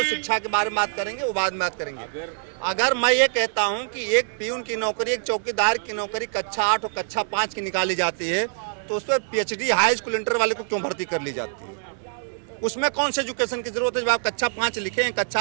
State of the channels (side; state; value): left; silent; digital silence